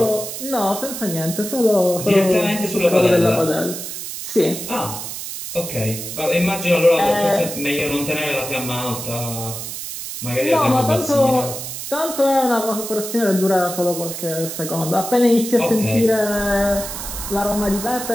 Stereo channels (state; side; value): noise; right; hiss, 8 dB below the sound